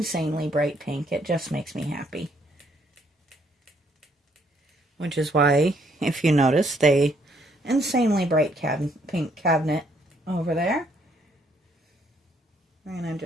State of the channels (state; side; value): normal; both; correlation 0.69